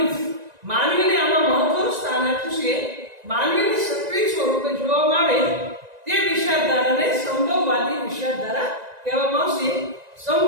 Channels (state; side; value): late; left; 1.9 ms